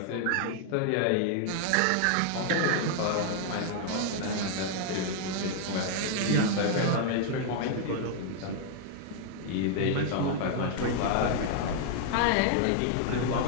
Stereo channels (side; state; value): both; different; correlation 0.00